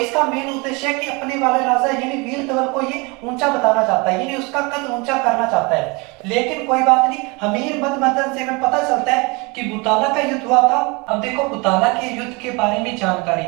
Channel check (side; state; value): left; quieter; 27.7 dB